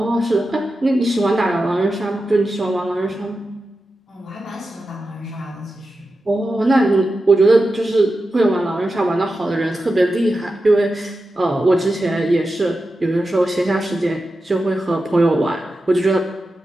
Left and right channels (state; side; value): normal; both; correlation 0.91